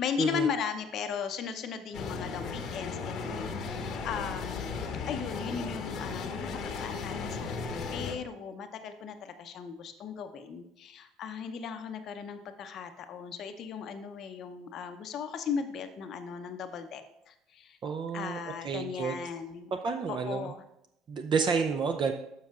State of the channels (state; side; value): normal; both; correlation 0.56